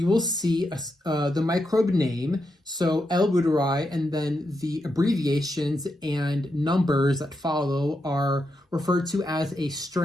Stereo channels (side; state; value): both; normal; correlation 0.84